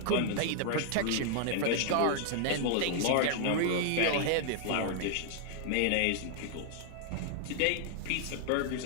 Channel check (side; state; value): both; different; correlation 0.00